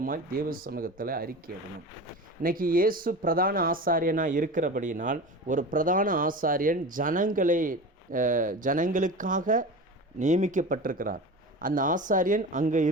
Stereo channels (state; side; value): normal; both; correlation 0.31